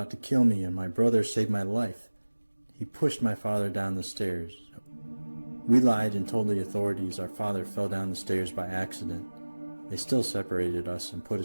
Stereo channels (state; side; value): inverted; both; correlation -1.00